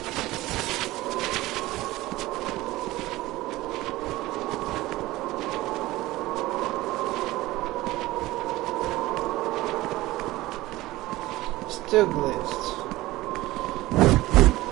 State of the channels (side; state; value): left; quieter; 18.1 dB